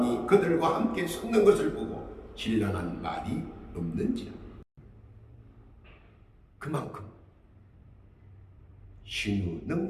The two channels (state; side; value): identical; both; correlation 1.00